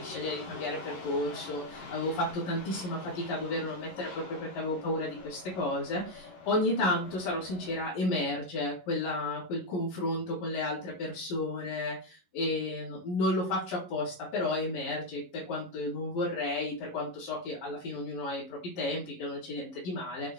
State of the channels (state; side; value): late; right; 11 ms